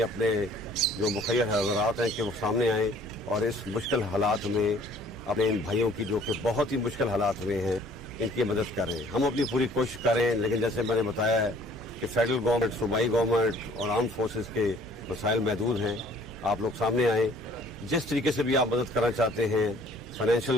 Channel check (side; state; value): both; normal; correlation 0.56